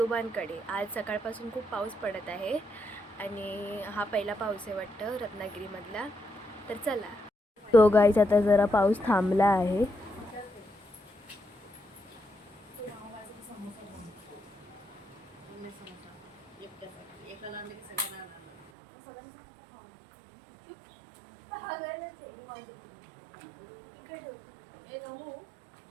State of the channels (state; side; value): drops out; left; at 18.7 s